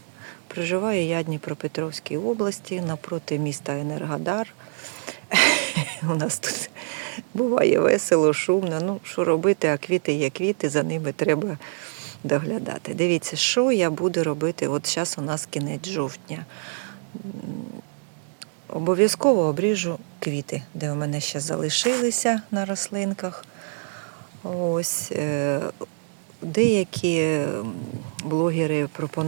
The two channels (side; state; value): left; silent; 62 dB below the other